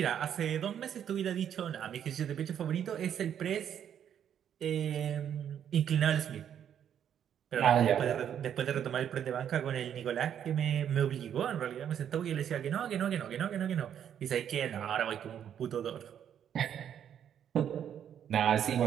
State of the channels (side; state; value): left; quieter; 9.3 dB